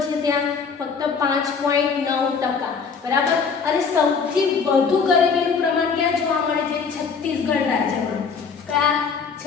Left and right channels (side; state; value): right; quieter; 5.6 dB